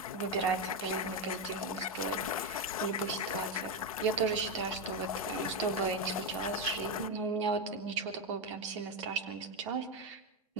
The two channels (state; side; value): normal; both; correlation 0.08